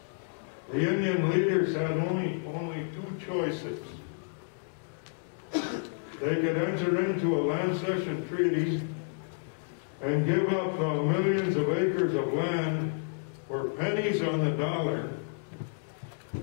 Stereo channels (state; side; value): silent; right; digital silence